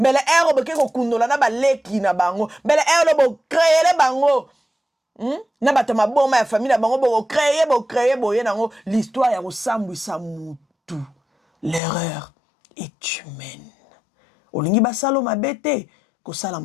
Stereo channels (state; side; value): drops out; right; at 11.8 s